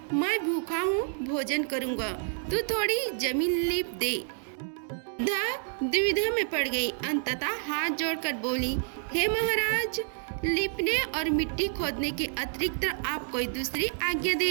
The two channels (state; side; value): silent; left; 59 dB below the other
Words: मैं भूखा हूँ, भोजन करूँगा, तू थोड़ी जमीन लीप दे। वृद्धा दुविधा में पड़ गई। अंततः हाथ जोड़कर बोली, हे महाराज, लिपने और मिट्टी खोदने के अतिरिक्त आप कोई दूसरी आज्ञा